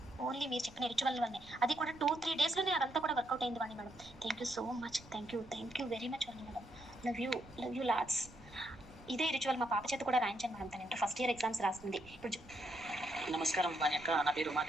ఓన్లీ మీరు చెప్పిన రిచువల్ వల్లనే. అది కూడా 2-3 daysలోనే అదంతా కూడా వర్కౌట్ అయింది Vani madam. Thank you so much. Thank you very much Vani madam. Love you lots. ఇదే రిచువల్ మా పాప చేత కూడా రాయించాను మేడం. తను ఇంటర్ ఫస్ట్ ఇయర్ ఎగ్జామ్స్ రాస్తుంది ఇప్పుడు. నమస్కారం వాణి అక్క, నా పేరు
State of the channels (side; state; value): right; noise; rumble, 21 dB below the sound